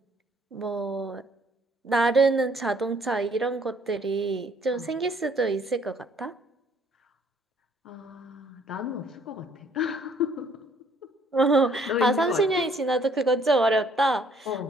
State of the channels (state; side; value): normal; both; correlation 0.62